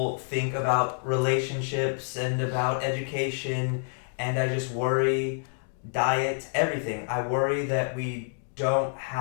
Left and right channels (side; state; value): right; silent; digital silence